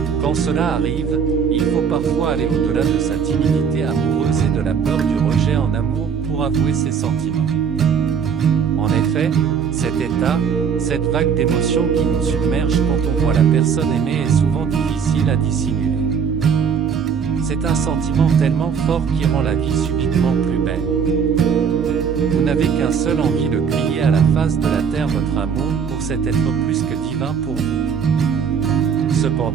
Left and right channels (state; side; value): quieter; left; 6.8 dB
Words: Quand cela arrive, il faut parfois aller au-delà de sa timidité amoureuse et de la peur du rejet en amour pour avouer ses sentiments. En effet, cet état, cette vague d'émotions qui nous submerge quand on voit la personne aimée est souvent difficile à dissimuler. C'est un sentiment tellement fort qui rend la vie subitement plus belle. Vous n'avez qu'un seul envie de crier à la face de la terre votre amour pour cet être plus que divin pour vous.